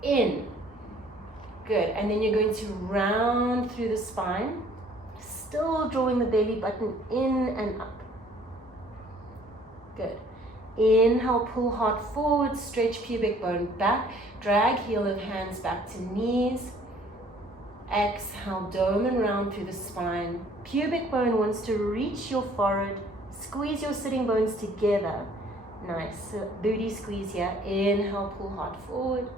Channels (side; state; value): both; normal; correlation 0.57